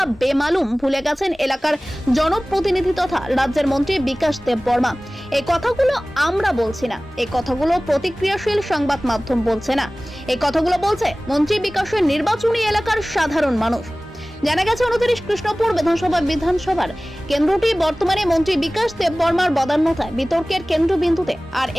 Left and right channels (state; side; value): normal; both; correlation 0.98